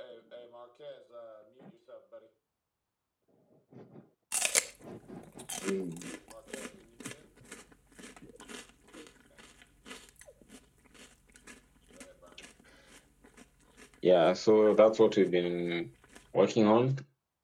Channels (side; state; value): both; identical; correlation 1.00